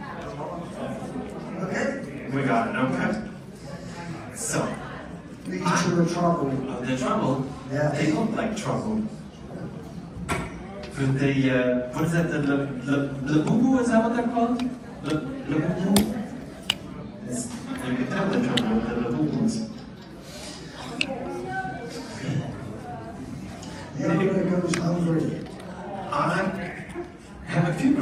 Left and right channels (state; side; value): identical; both; correlation 1.00